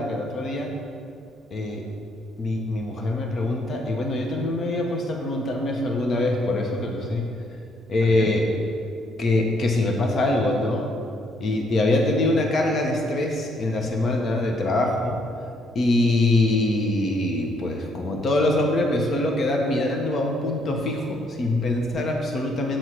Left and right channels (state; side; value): normal; both; correlation 0.70